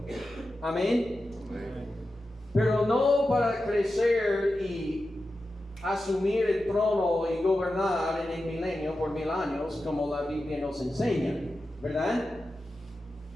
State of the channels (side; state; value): both; normal; correlation 0.92